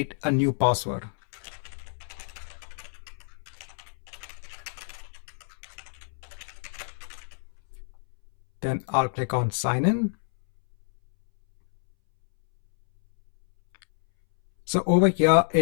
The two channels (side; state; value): right; silent; 59 dB below the other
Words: a new password. Then I'll click on sign in. So over here,